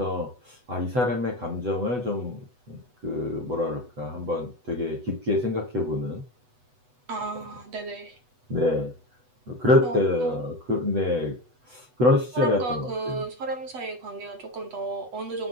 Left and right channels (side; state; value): left; late; 8.0 ms